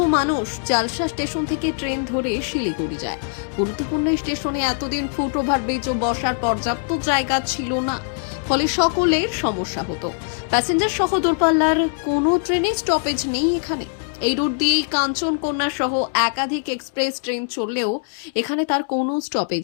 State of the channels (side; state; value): right; silent; digital silence